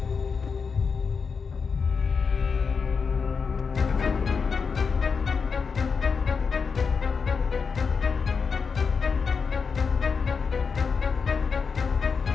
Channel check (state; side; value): quieter; right; 5.5 dB